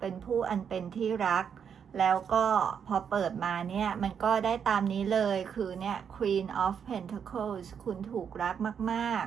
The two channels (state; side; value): quieter; left; 7.5 dB